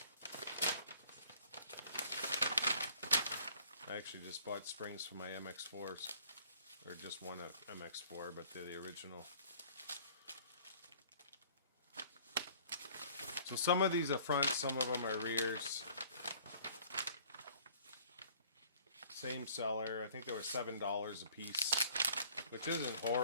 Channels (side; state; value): both; inverted; correlation -0.54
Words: I actually just bought springs for my MX-4s, or just one MX-4, but they're the original. So some of these are fronts, some of them are rears. Same seller. I think they were $7 a piece, which isn't